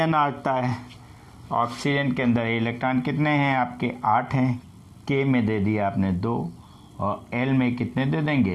आता है। ऑक्सीजन के अंदर इलेक्ट्रॉन कितने हैं आपके? 8 हैं। K में दे दिया आपने 2, और L में कितने दे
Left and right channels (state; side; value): identical; both; correlation 1.00